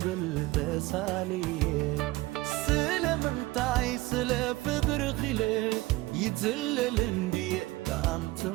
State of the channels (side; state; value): left; quieter; 19.7 dB